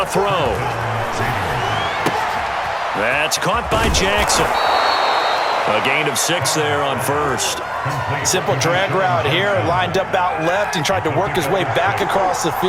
throw. That's caught by Jackson. A gain of 6 there on first. Simple drag route here, lined up out left and tried to work his way back across the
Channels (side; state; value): both; identical; correlation 1.00